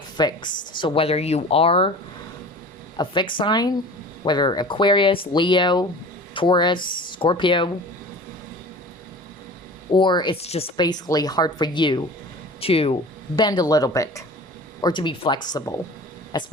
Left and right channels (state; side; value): normal; both; correlation 0.39